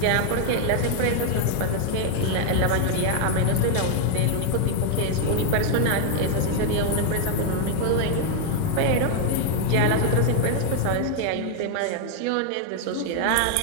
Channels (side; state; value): both; different; correlation 0.00